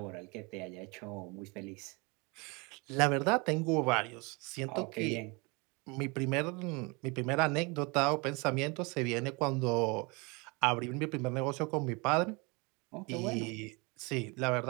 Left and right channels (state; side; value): quieter; left; 28.4 dB